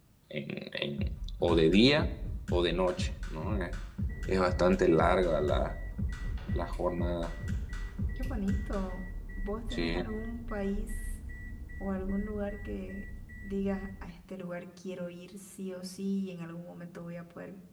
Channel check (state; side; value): identical; both; correlation 1.00